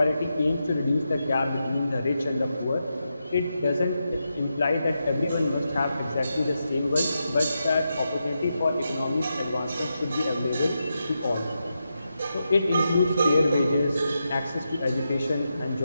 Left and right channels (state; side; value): inverted; both; correlation -0.87